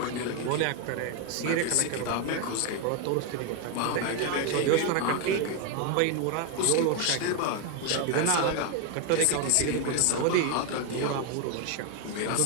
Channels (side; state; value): both; different; correlation 0.01